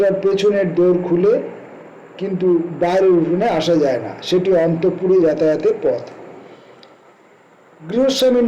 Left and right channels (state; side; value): identical; both; correlation 1.00